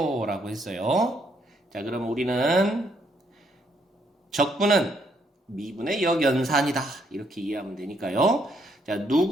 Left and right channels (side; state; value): both; normal; correlation 0.72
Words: 라고 했어요. 자, 그럼 우리는 적분은 미분의 역연산이다 이렇게 이해하면 되니까요. 자,